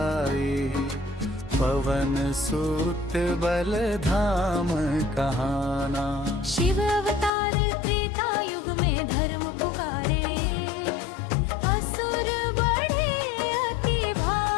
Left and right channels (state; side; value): drops out; right; at 7.3 s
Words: पवन सुत बल धाम कहाना। शिव अवतार त्रेता युग में धर्म पुकारे, असुर बढ़े अति